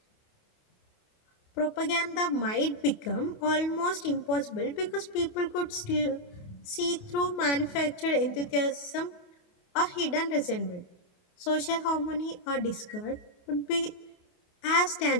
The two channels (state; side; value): late; right; 28 ms